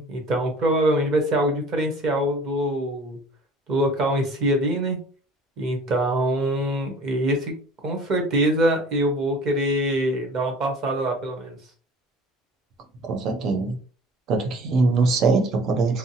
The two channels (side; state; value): both; normal; correlation 0.47